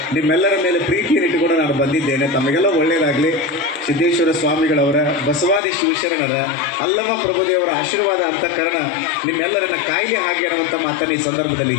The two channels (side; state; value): right; drops out; at 5.6 s